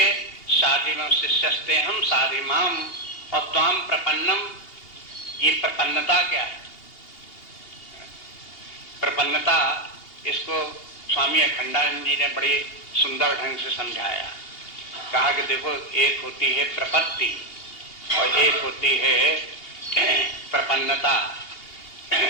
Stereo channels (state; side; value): late; right; 2.8 ms